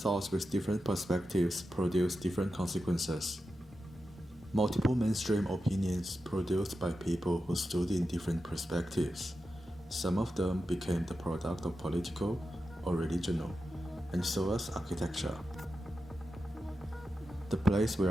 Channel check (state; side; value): normal; both; correlation 0.90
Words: with different perspectives produce different consequences. Multiple mainstream opinions produced by people who stood in different perspectives. Some of them became the product of political or religional, and so was architecture. The place